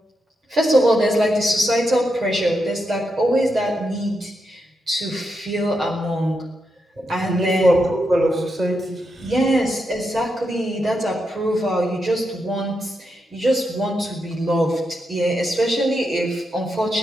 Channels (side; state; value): both; normal; correlation 0.84